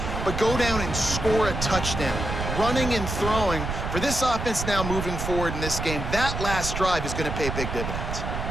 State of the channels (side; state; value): right; noise; rumble, 4 dB below the sound